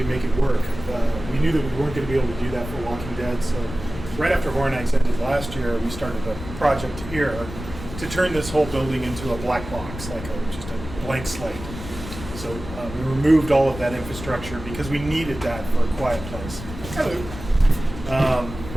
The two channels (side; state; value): left; noise; rumble, 11 dB below the sound